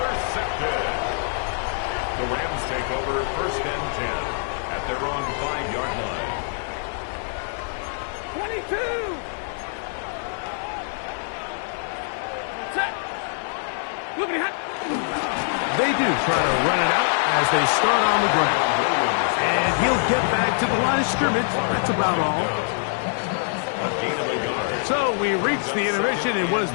The Rams take over first and 10 at their own 5-yard line. 22. Set. Look at it. They do try to run it out as they start on the ground. And he'll get back to the line of scrimmage. That's about all. A gain of a yard. So we reach the intermission in what has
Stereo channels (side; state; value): right; silent; digital silence